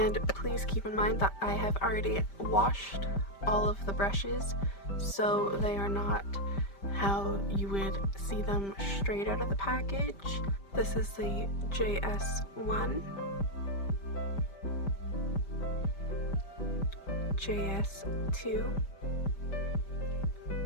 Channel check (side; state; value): right; late; 5.1 ms